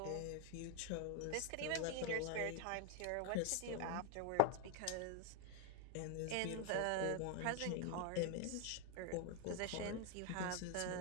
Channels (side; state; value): both; different; correlation 0.01